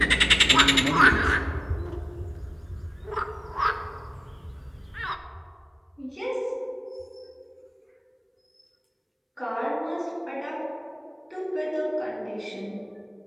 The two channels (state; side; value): identical; both; correlation 1.00